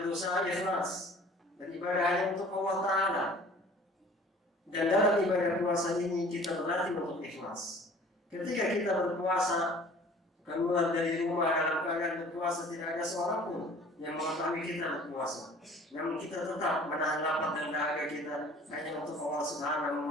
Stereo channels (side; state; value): both; normal; correlation 0.48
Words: berusaha ikhlas dan ibadah hanya untuk Allah Taala. Dan dalam ibadah puasa ini kita berlatih untuk ikhlas. Ketika kita berpuasa, keluar dari rumah dalam keadaan berpuasa, tidak ada seorang pun yang mengetahui kita berpuasa. Namun kita tetap menahan lapar dan dahaga kita hanya untuk Allah